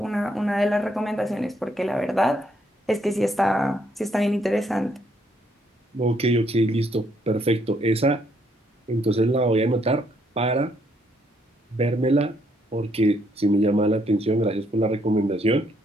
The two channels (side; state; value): both; normal; correlation 0.71